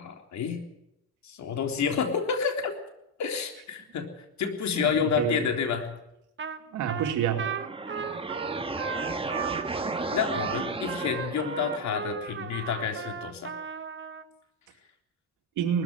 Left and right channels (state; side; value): normal; both; correlation 0.02